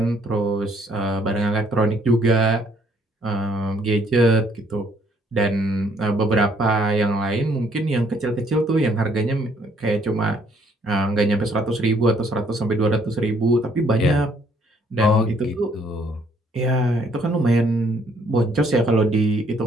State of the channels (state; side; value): normal; both; correlation 0.66